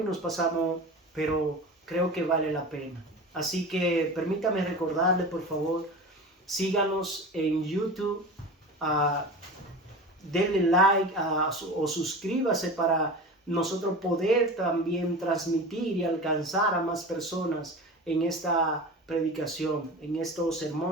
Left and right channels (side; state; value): both; normal; correlation 0.32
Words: nos pasamos, pero creo que vale la pena. Así que permítame recordarle, por favor, síganos en YouTube, denle like o suscríbase para nosotros poder también transmitir y alcanzar a más personas en esta predicación, en estos